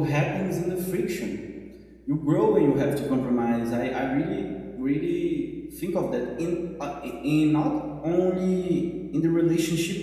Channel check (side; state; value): both; identical; correlation 1.00